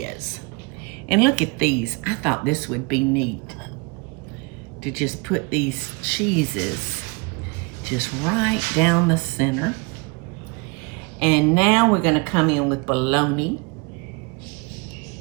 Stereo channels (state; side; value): quieter; left; 29.8 dB